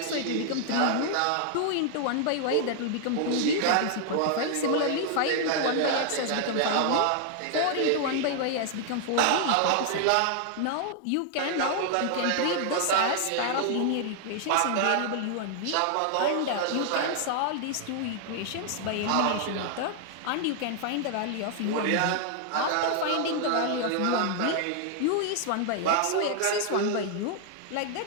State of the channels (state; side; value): different; both; correlation 0.00